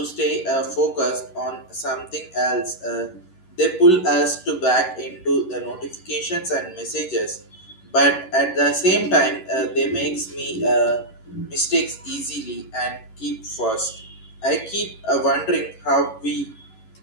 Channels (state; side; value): late; right; 11 ms